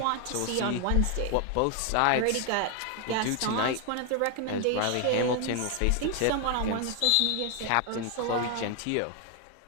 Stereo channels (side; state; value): both; different; correlation 0.01